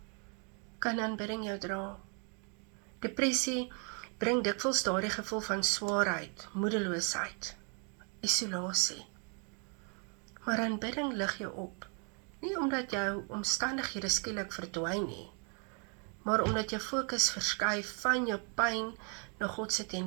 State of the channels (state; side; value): quieter; left; 37.7 dB